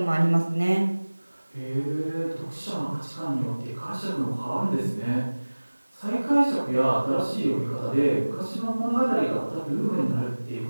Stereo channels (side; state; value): both; inverted; correlation -1.00